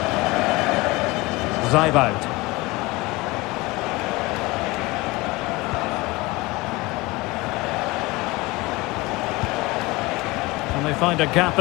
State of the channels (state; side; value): quieter; right; 22.3 dB